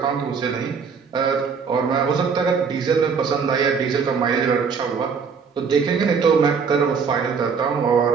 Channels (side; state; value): left; quieter; 5.8 dB